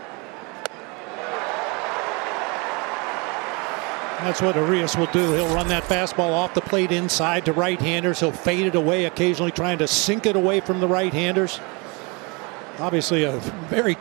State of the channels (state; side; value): quieter; left; 29.6 dB